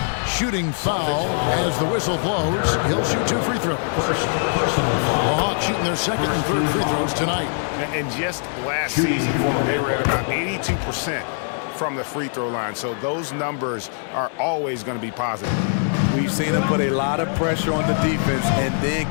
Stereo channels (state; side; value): silent; right; digital silence